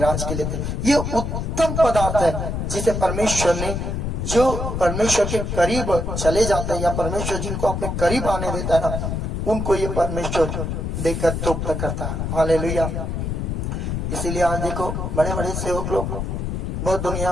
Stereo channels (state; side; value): noise; left; rumble, 2 dB below the sound